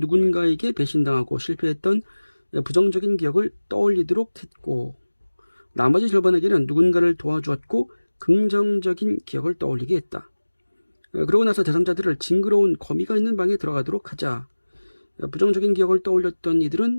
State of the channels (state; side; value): inverted; both; correlation -1.00